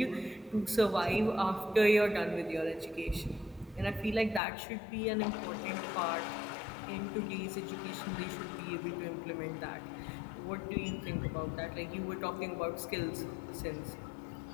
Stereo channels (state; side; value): drops out; right; at 4.4 s